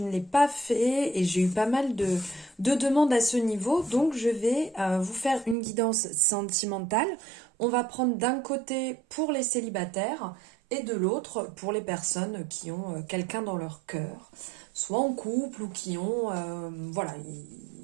l'ai pas fait et j'ai eu pas mal de demandes à ce niveau, donc je vais vous faire une guidance sentimentale. On va prendre d'un côté pour les célibataires et de l'autre pour les personnes qui ont quelqu'un dans leur cœur, soit en couple ou qui ont, voilà,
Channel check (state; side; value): drops out; left; at 5.6 s